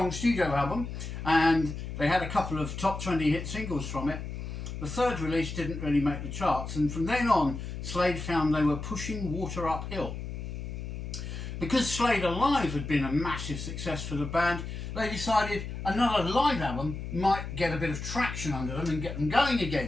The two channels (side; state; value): left; noise; hum, 7 dB below the sound